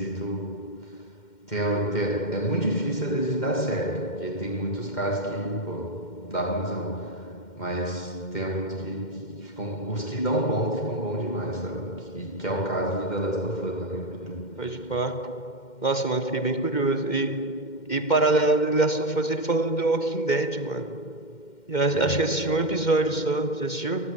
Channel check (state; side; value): late; right; 2.1 ms